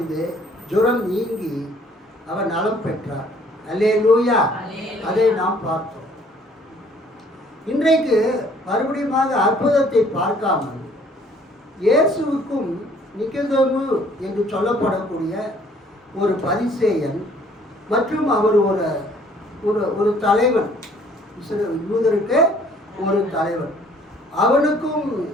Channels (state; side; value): normal; both; correlation 0.59